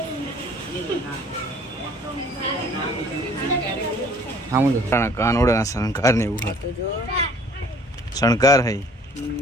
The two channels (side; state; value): both; normal; correlation 0.54